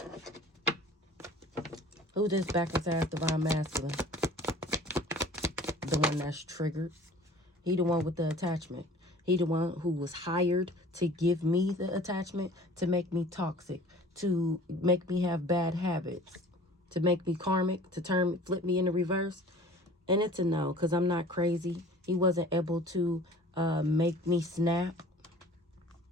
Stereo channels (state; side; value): normal; both; correlation 0.47